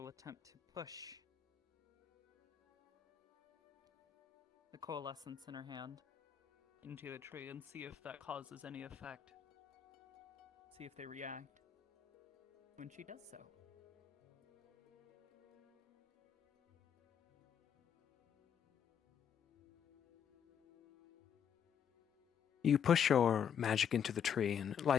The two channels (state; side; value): quieter; right; 8.2 dB